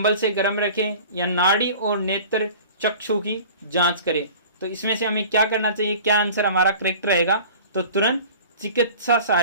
से गर्म रखें, या नाड़ी और नेत्र चक्षु की जांच करें। तो इसमें से हमें क्या करना चाहिए? क्या आंसर हमारा करेक्ट रहेगा? तो तुरंत चिकित्सा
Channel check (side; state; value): both; inverted; correlation -0.42